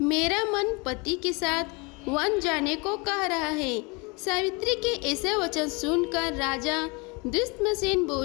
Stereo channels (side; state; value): right; quieter; 29.0 dB